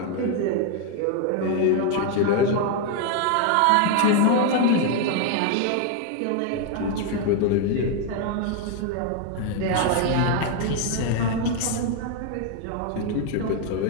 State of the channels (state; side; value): different; both; correlation 0.01